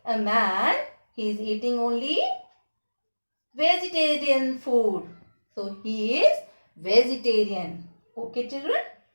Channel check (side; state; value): both; inverted; correlation -1.00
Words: a man, he is eating only vegetarian food. So he is vegetarian. Okay children.